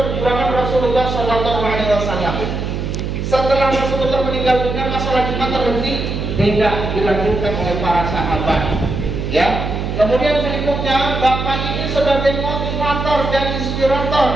Rasulullah SAW. Setelah Rasulullah meninggal dunia, masalah Jumat terhenti, tidak dilanjutkan oleh para sahabat. Ya. Kemudian berikutnya, Bapak ini sebagai motivator dan inspirator,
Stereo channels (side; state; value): right; noise; hum, 3 dB below the sound